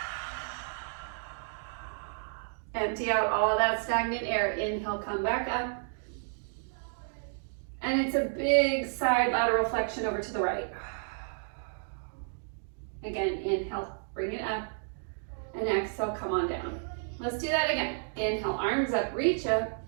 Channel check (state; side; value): silent; left; digital silence